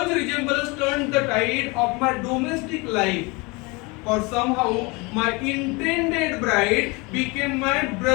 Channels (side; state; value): right; quieter; 26.9 dB